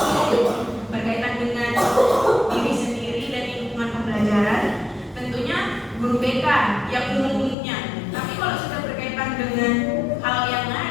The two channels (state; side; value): drops out; right; at 7.6 s